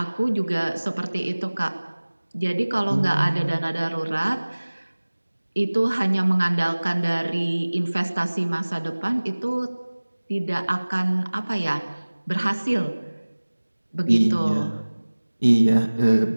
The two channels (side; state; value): both; inverted; correlation -1.00